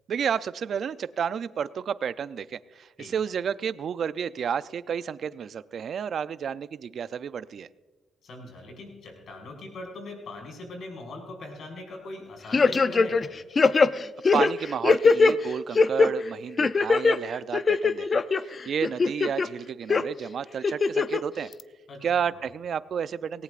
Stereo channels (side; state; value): both; normal; correlation 0.83